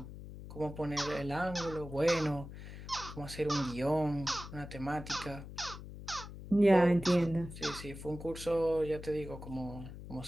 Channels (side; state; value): left; noise; hum, 12 dB below the sound